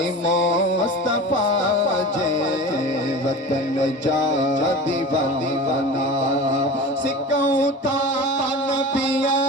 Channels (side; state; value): both; normal; correlation 0.34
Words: मुस्तफा जे वतन जा दीवाना सिकऊं ता नबिया